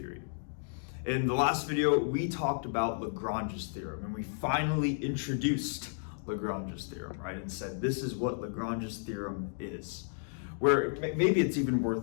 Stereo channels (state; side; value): silent; right; digital silence